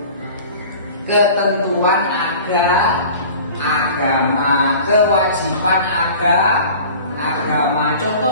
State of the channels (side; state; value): both; inverted; correlation -0.42